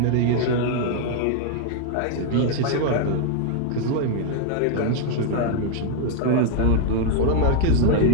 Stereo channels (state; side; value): different; both; correlation 0.00